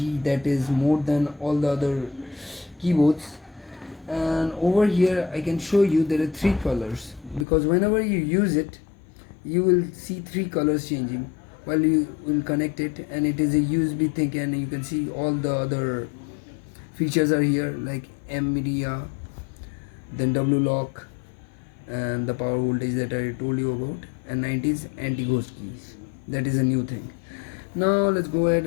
that is more than all the other keyboards. And over here I can show you there are 3 colors, because whenever you use it you will see 3 colors changing while you will connect it, and it is a USB thing, and you can see all the other features are here, like M media, then W lock, and the power voltage that I told you about, and 90s anti-ghost keys. That is a new thing. Now let's go ahead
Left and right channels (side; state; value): right; drops out; at 7.5 s